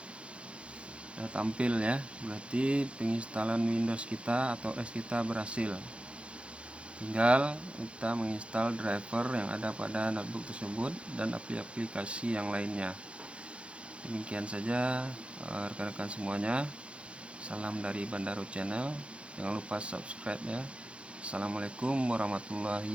sudah tampil ya, berarti penginstalan Windows kita atau OS kita berhasil. Tinggal kita menginstal driver yang ada pada notebook tersebut dan aplikasi yang lainnya. Demikian saja rekan-rekan semuanya. Salam dari Bandaro Channel. Jangan lupa subscribe ya. Assalamualaikum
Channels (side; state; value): left; late; 0.059 ms